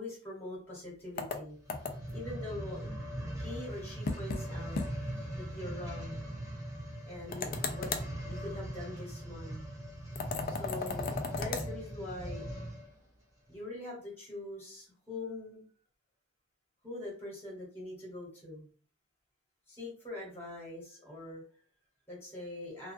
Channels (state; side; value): normal; both; correlation 0.49